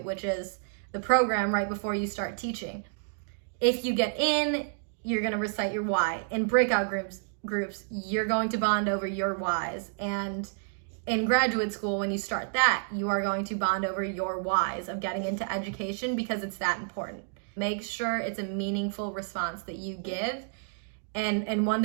which is the program right before you start teaching, if you get in, you're going to recite your why. In breakout groups, you're going to bond over your whys. And in graduate school, when you start that, you are going to bond over your whys of getting into education because it's that important. Make sure it's a meaningful response that you give and one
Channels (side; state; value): left; silent; digital silence